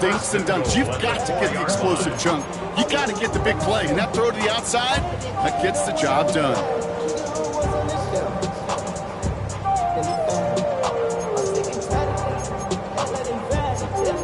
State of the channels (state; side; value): identical; both; correlation 1.00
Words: and dunks. You've got to get the explosive chunk. You got to get the big play. And that throw to the outside, that gets the job done.